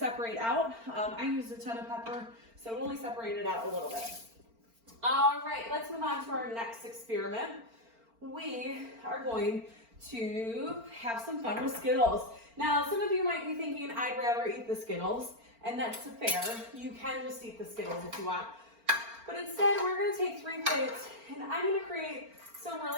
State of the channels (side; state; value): left; late; 4.4 ms